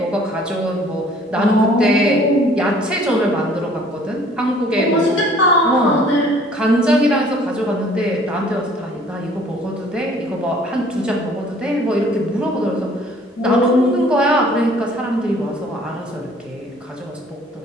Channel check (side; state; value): both; normal; correlation 0.55